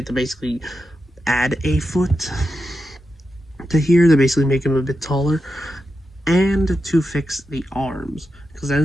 to basically add a foot to here to basically make him a bit taller, and to fix the arms, because that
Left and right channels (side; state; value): both; normal; correlation 0.88